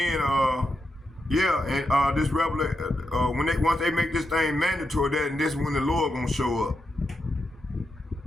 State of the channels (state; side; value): normal; both; correlation 0.85